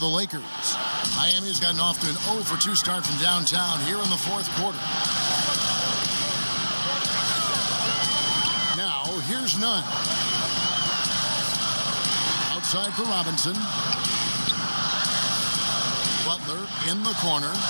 Lakers. Miami's gotten off to an 0 for 2 start from downtown here in the 4th quarter. Now, here's Nunn. Outside for Robinson. Butler in the corner.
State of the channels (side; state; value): both; inverted; correlation -1.00